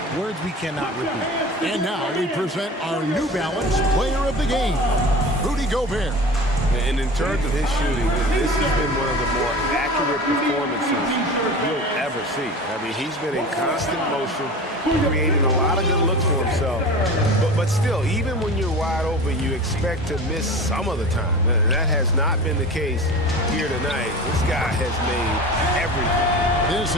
Words we cannot repeat. And now we present our New Balance Player of the Game, Rudy Gobert. And in terms of his shooting, this has been one of the more accurate performances you'll ever see. I mean, he's been in constant motion, creating a lot of good looks for himself. But still, even when you're wide open, you expect to miss some of the time. That has not been the case here tonight. This guy has made everything. This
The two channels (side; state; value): both; normal; correlation 0.35